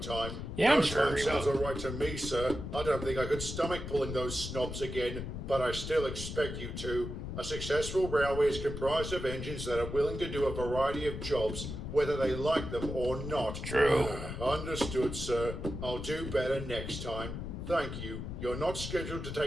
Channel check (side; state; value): left; noise; rumble, 6 dB below the sound